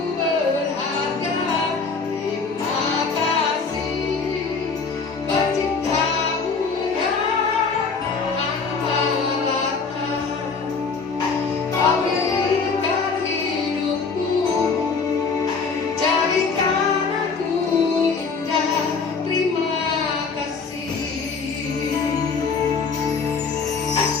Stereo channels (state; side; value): quieter; right; 4.9 dB